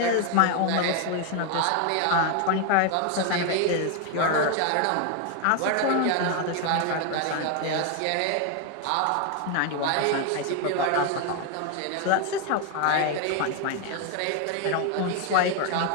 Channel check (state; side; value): different; both; correlation 0.01